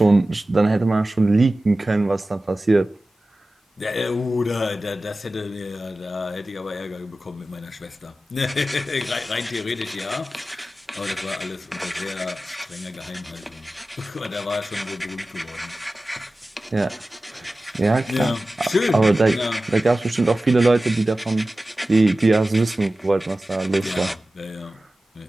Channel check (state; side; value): normal; both; correlation 0.96